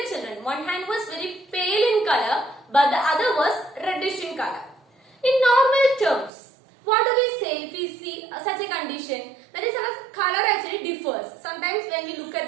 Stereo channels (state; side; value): drops out; left; at 6.3 s